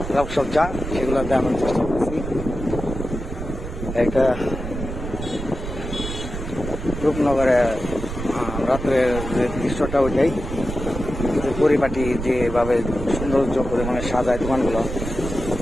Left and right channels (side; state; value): right; noise; rumble, 7 dB below the sound